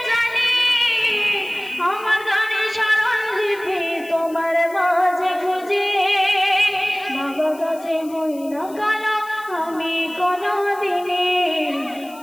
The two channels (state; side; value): noise; left; hiss, 22 dB below the sound